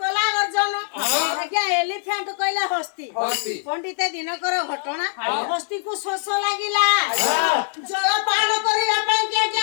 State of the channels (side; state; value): right; silent; digital silence